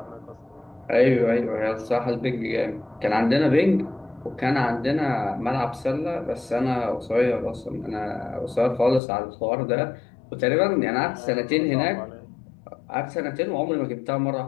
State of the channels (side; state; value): right; drops out; at 9.0 s